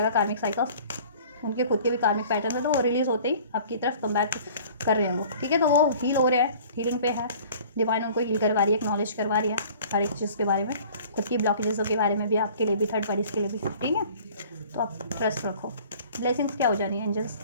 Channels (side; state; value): both; inverted; correlation -0.49